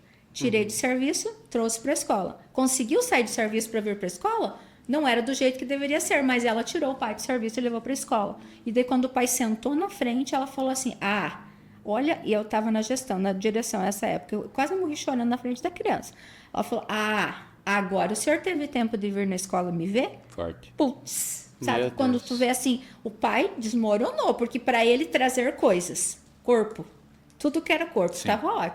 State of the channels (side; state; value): both; identical; correlation 1.00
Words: Tirei de serviço, trouxe para a escola. Conseguiu sair de serviço para vir para a escola? Não era do jeito que deveria ser, mas ela tirou o pai do serviço e levou para a escola. E daí, quando o pai sentou na frente, ela falou assim: olha, e eu estava na gestão, na direção nessa época, eu quase morri chorando na frente da criança. Ela falou: agora o senhor teve tempo de vir na escola me ver? Forte. Putz, sabe? Meu Quando Deus. tu vê assim, o pai desmoronou, porque para ele trazer coisas, corpo, tudo que era corpo, estava